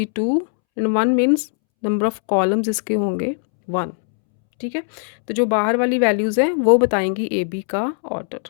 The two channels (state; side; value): silent; right; 66 dB below the other